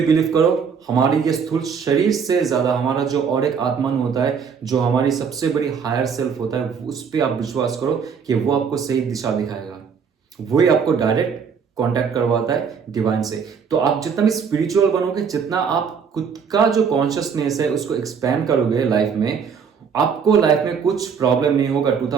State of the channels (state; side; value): quieter; left; 6.4 dB